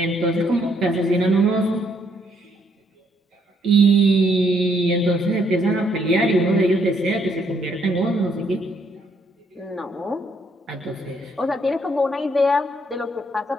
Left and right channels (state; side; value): normal; both; correlation 0.71